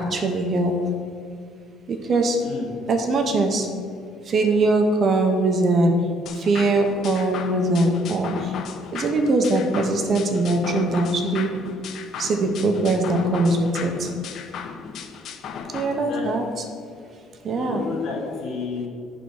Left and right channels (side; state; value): both; normal; correlation 0.66